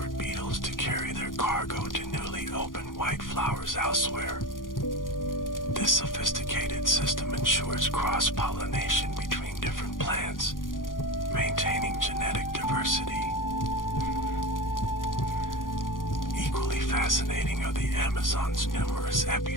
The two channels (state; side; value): late; right; 0.90 ms